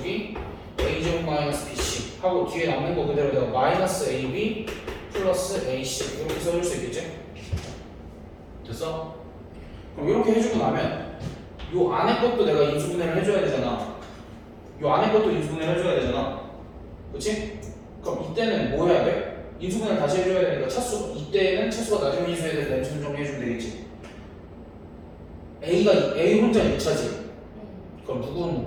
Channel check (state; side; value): identical; both; correlation 1.00